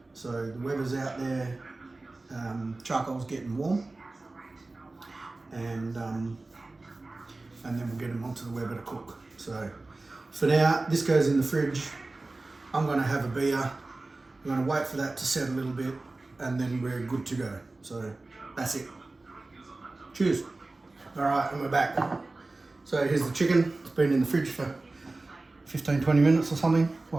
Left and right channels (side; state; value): left; quieter; 3.2 dB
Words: So the Weber's out there, charcoal's getting warm, and then we'll get them onto the Weber to cook. So for now, this goes in the fridge. I'm going to have a beer. I'm going to wait for that to set a little bit, and then we're good to go. So that's it. Cheers. All right, and we're back. So here's the chicken. It's been in the fridge for 15-20 minutes or something,